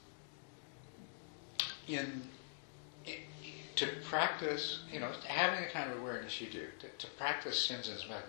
to practice, having the kind of awareness you do, to practice Shinzen's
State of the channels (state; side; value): silent; right; digital silence